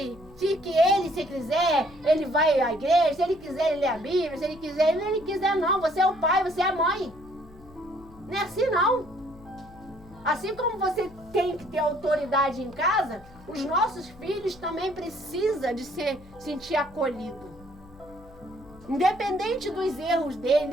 quiser, ele vai à igreja, se ele quiser, ele lê a Bíblia, se ele quiser não, você é o pai, você é a mãe. Não é assim não. Assim como você tem que ter autoridade em casa, os nossos filhos também precisam de sentir acolhido. Independente dos erros dele,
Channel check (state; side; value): noise; left; hum, 22 dB below the sound